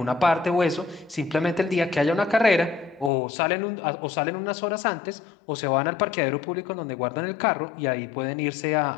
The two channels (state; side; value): drops out; right; at 3.1 s